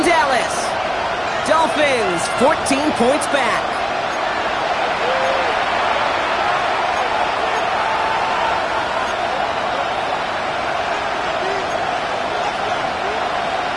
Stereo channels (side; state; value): both; identical; correlation 1.00